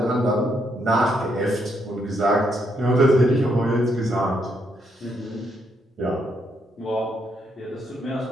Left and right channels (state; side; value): normal; both; correlation 0.76